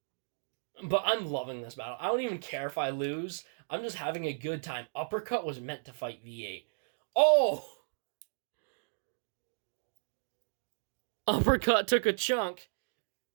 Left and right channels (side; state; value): left; silent; digital silence